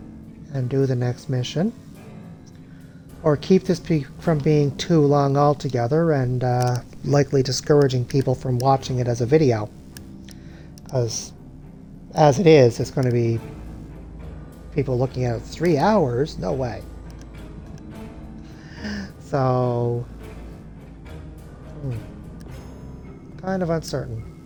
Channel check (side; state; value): both; identical; correlation 1.00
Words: and do the next mission, or keep this from being too long altogether and likely discouraging people from watching it as a video. Because as it is, it's going to be people looking at it 3 hours? No way. So, kind of uncertain.